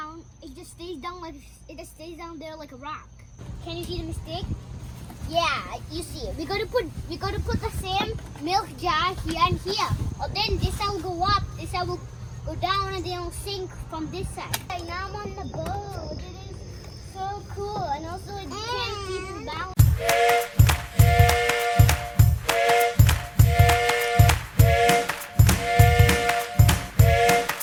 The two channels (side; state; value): both; identical; correlation 1.00